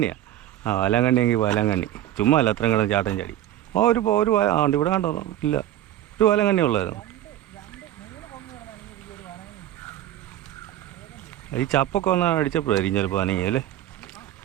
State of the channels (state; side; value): quieter; left; 12.7 dB